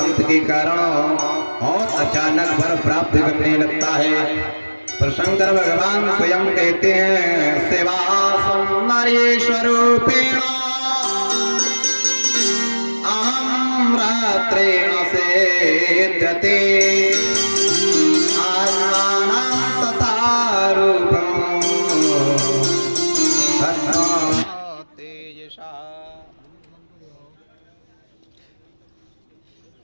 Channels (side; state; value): both; inverted; correlation -1.00